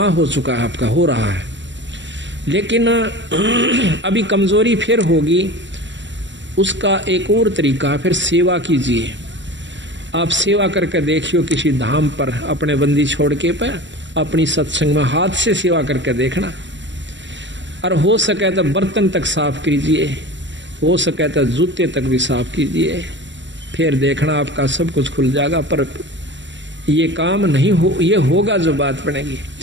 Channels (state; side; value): late; left; 0.53 ms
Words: हो चुका है, आपका हो रहा है, लेकिन अभी कमजोरी फिर होगी। उसका एक और तरीका, फिर सेवा कीजिए। आप सेवा करके देखियो किसी धाम पर अपने बंदी छोड़ के पर अपनी सत्संग में हाथ से सेवा करके देखना, और हो सके तो बर्तन तक साफ कीजिए, हो सके तो जूते तक भी साफ कीजिए, फिर देखना आपका सब कुछ खुल जाएगा। पर ये काम नहीं हो, ये होगा जो बात बनेगी।